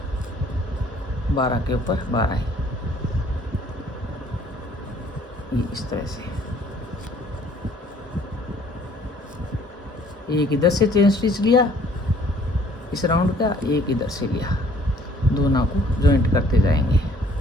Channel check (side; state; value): both; normal; correlation 0.58